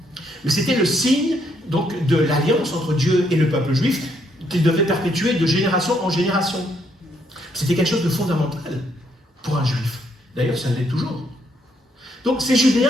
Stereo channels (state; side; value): normal; both; correlation 0.72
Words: Mais c'était le signe donc, de l'alliance entre Dieu et le peuple juif qu'il devait perpétuer de génération en génération. C'était quelque chose de fondamental pour un juif. D'ailleurs, ça l'est toujours. Donc ces